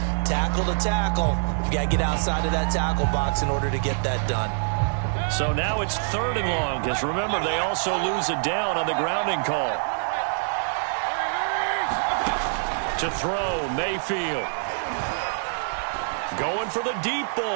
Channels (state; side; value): silent; left; 62 dB below the other